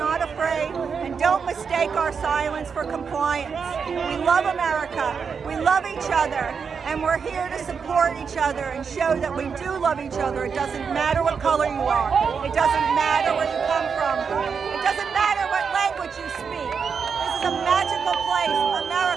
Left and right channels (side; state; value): left; quieter; 6.0 dB